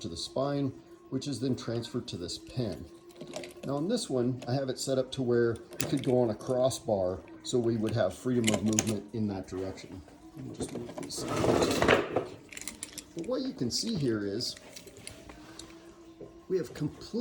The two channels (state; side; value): identical; both; correlation 1.00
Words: to the spine, which is then transferred to this pin. Now on this one, I have it set up to where it could go on a crossbar, so we would have freedom of movement in that direction. Let me just move this. But what you can see here is we have